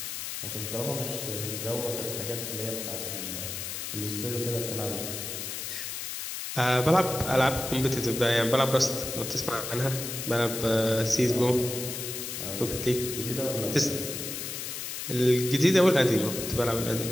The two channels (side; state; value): left; noise; hiss, 6 dB below the sound